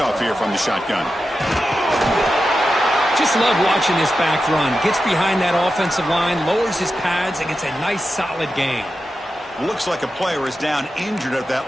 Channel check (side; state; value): both; normal; correlation 0.91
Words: here from the shotgun. Just love watching this back run. Gets behind that offensive line, lowers his pads, and gets a nice solid gain. Looks like a player is down injured at